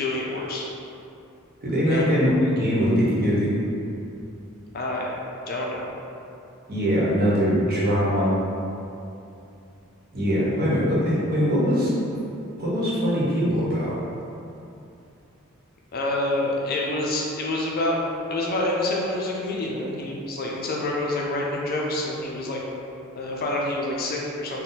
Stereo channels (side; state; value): both; normal; correlation 0.51